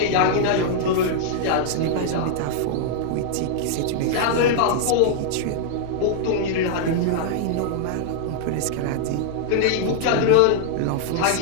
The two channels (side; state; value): both; different; correlation -0.01